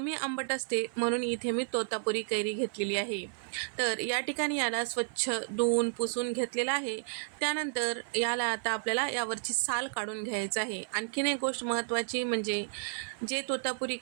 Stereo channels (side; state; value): left; silent; 56 dB below the other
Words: आंबट असते म्हणून इथे मी तोतापुरी कैरी घेतलेली आहे. तर या ठिकाणी याला स्वच्छ धुवून पुसून घेतलेलं आहे. त्यानंतर याला आता आपल्याला यावरची साल काढून घ्यायचं आहे. आणखीन एक गोष्ट महत्त्वाची म्हणजे जे तोतापुरी